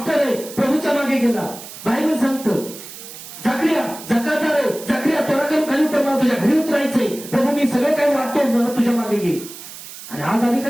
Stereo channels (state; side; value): noise; right; hiss, 14 dB below the sound